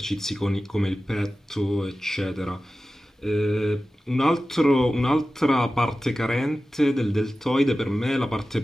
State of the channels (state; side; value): normal; both; correlation 0.95